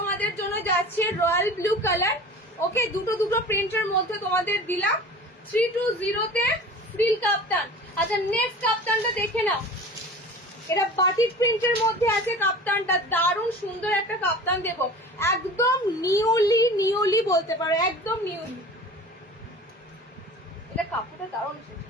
জন্য যাচ্ছে রয়্যাল ব্লু কালার। ওকে, দুটো দুটো প্রিন্টের মধ্যে তোমাদের দিলাম 320 তে ফ্রিল কাপ্তান। আচ্ছা, নেক্সট কাপ্তানটা দেখে নাও, এটা বাটিক প্রিন্টের মধ্যে আছে কাপ্তানটা, দারুণ সুন্দর একটা কাপ্তান দেবো, একদম নিউলি বলতে পারো, একদম নিউলি। এটা কাপড়টা দারুণ এসেছে,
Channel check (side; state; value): both; normal; correlation 0.39